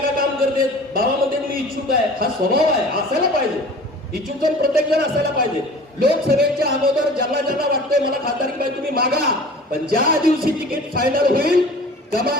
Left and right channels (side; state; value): both; normal; correlation 0.43